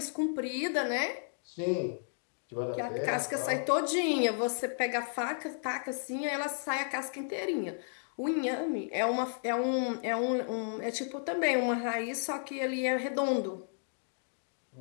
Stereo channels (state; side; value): silent; right; digital silence